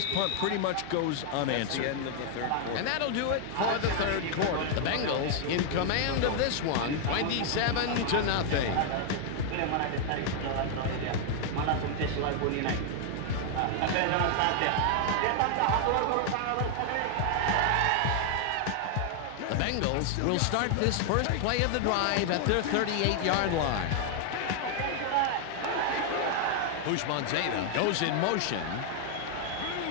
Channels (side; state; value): both; different; correlation 0.00